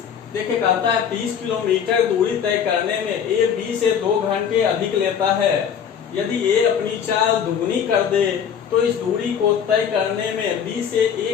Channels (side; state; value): right; quieter; 7.8 dB